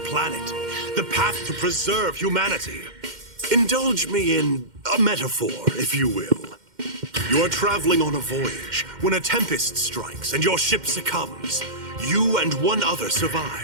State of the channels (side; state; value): left; late; 2.1 ms